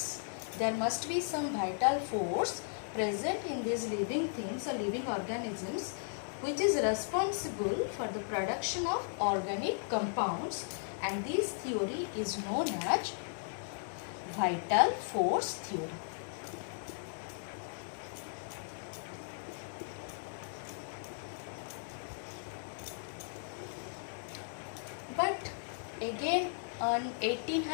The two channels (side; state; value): right; silent; digital silence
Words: There must be some vital force present in these living things or living organisms which is responsible for the production of organic compounds, and this theory is known as vital force theory. But again on